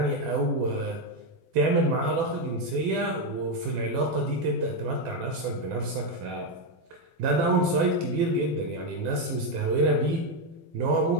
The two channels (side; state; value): left; late; 12 ms